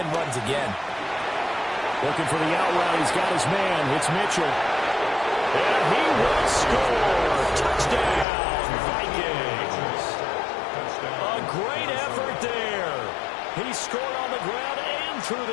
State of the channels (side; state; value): right; drops out; at 8.2 s